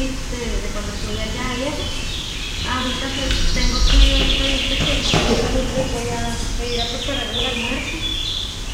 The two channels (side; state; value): both; identical; correlation 1.00